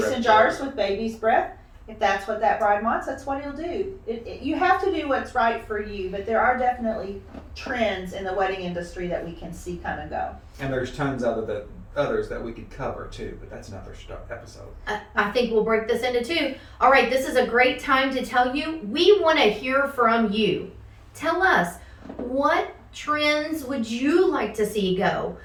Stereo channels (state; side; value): identical; both; correlation 1.00